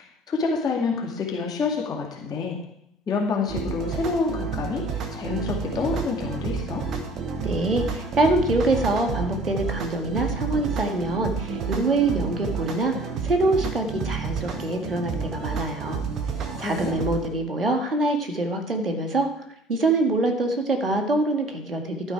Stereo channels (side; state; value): both; normal; correlation 0.51